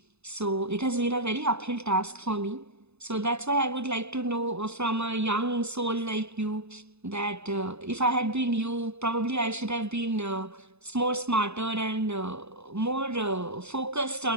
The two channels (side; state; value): left; late; 0.81 ms